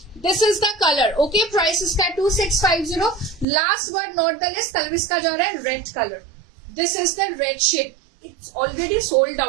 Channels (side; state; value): left; drops out; at 3.5 s